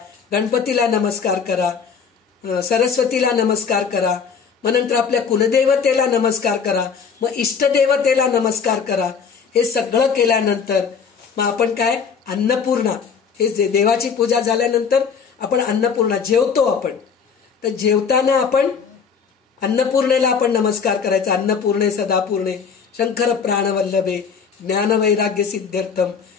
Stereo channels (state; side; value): quieter; right; 6.3 dB